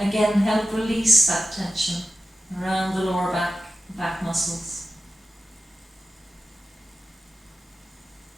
release that tension around the lower back muscles.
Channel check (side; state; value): both; normal; correlation 0.92